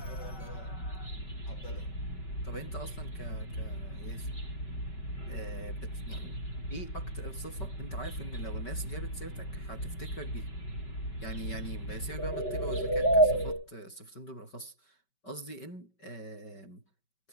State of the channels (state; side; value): late; right; 5.2 ms